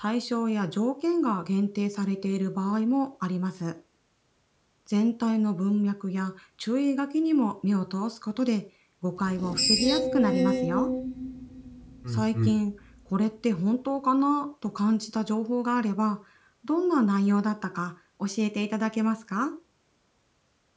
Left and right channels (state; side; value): identical; both; correlation 1.00